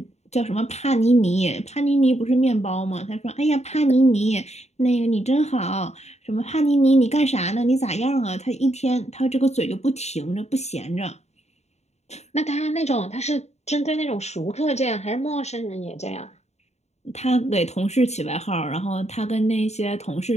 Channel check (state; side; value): late; right; 0.32 ms